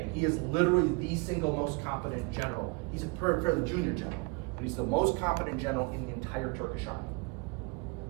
He is literally the single most competent general. He's a fairly junior general, but he's the most competent general in the entire Turkish army.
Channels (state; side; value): quieter; left; 30.5 dB